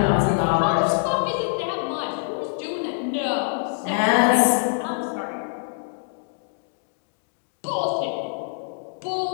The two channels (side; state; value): right; silent; digital silence